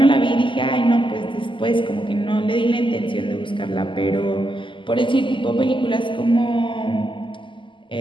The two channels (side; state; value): right; late; 0.24 ms